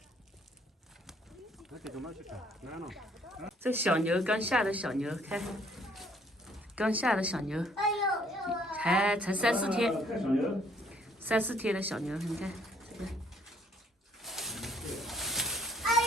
这小牛刚下的小牛，看，刚下的小牛，才3、4天，3、4天的小牛，你看这个。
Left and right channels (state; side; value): normal; both; correlation 0.63